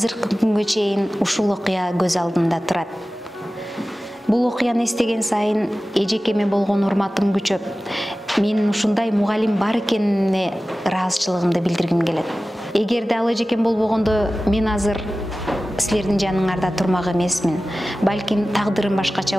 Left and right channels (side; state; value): both; normal; correlation 0.96